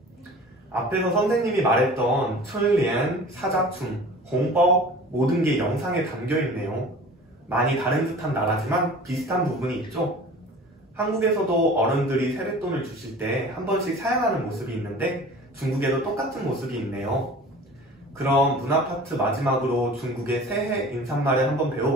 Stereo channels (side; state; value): both; normal; correlation 0.42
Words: 앞에서 선생님이 말했던春联, 사자춤, 홍보 모든 게 영상에 담겨 있네요. 많이 다른 듯한 나라지만 비슷한 부분이 있죠. 한국에서도 어른들이 세뱃돈을 주실 때 한 번씩 사양하는 모습이 있는데 중국에도 똑같은 모습이 있네요. 그럼 문화 파트 마지막으로 중국의 새해 인사말을 한번